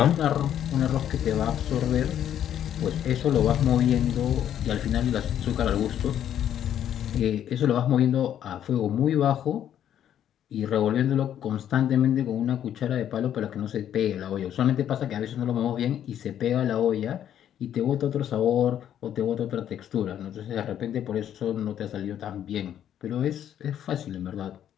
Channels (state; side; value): quieter; right; 10.3 dB